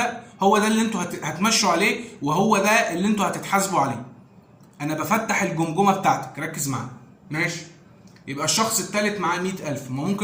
هو ده اللي انتوا هتمشوا عليه، وهو ده اللي انتوا هتتحاسبوا عليه. انا بفتح الجمجمه بتاعتك، ركز معايا. ماشي. يبقى الشخص الثالث معاه 100,000، ما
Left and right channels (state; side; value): identical; both; correlation 1.00